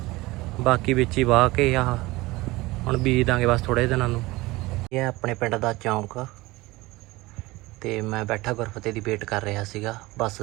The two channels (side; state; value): left; quieter; 20.6 dB